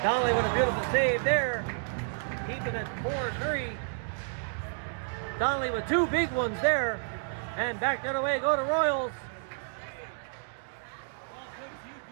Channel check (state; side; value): silent; left; digital silence